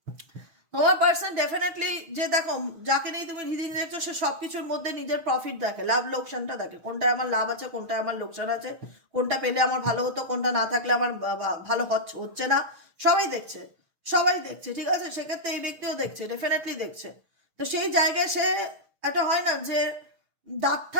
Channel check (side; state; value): left; late; 6.5 ms